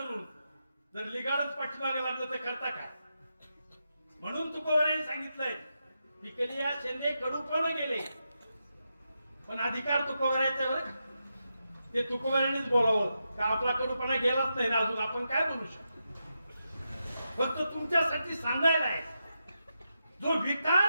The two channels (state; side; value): inverted; both; correlation -0.86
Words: जर लिगाडच पाठीमागे लागलं तर करता काय? म्हणून तुकोबारांनी सांगितलंय पिकली या शेंदे कडूपण गेले, पण अधिकार तुकोबारांचा बरं. ते तुकोबारांनीच बोलावं का आपला कडूपणा गेलाच नाही ना अजून, आपण काय बोलू शकतो? फक्त तुमच्यासाठी सांगायला आहे, जो